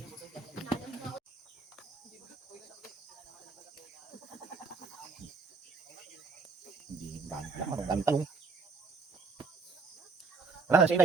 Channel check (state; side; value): quieter; left; 4.5 dB